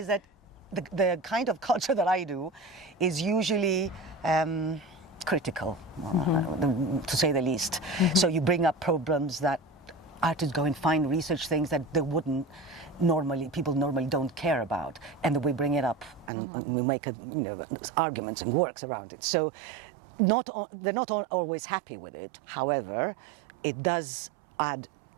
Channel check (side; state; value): left; drops out; at 16.3 s